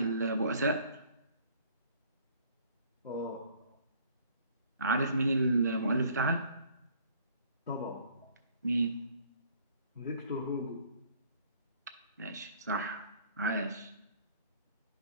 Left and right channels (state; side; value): inverted; both; correlation -0.56